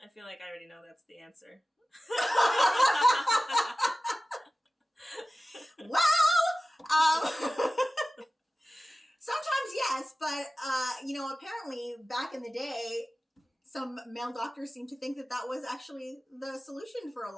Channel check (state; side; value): normal; both; correlation 0.96